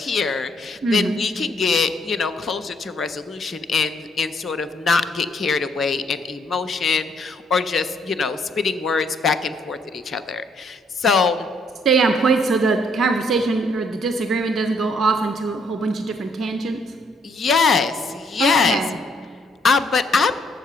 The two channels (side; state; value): both; normal; correlation 0.69